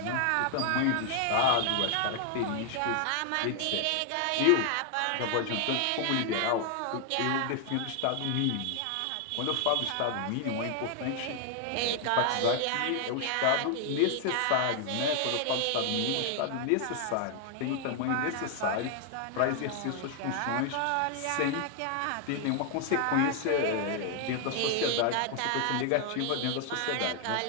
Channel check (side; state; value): both; different; correlation 0.00